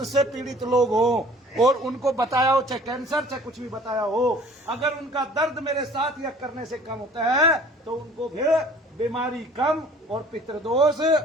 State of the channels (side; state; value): both; normal; correlation 0.50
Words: से पीड़ित लोग हो और उनको बताया हो, चाहे कैंसर चाहे कुछ भी बताया हो, अगर उनका दर्द मेरे साथ यज्ञ करने से कम होता है तो उनको फिर बीमारी कम और पितृदोष